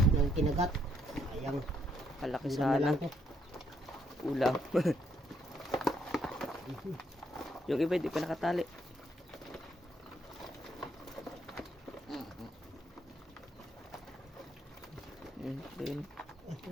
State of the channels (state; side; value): normal; both; correlation 0.72